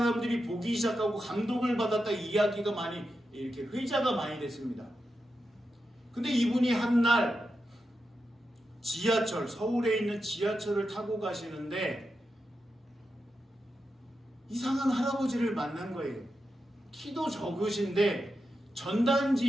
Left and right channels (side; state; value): both; normal; correlation 0.88